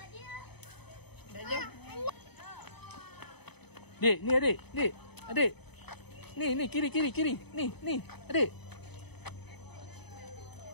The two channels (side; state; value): right; late; 0.98 ms